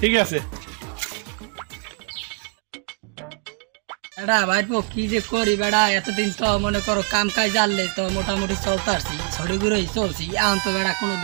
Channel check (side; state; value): left; quieter; 39.6 dB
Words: ঠিক আছে। বেড়া ভাইপো কি যে করি বেড়া, এতদিন তো মনে করো কাম কাজ জানলে তো মোটামুটি চলতে আসছি, ছড়িগুলোই চলছি, এখন তো বেড়া কোনো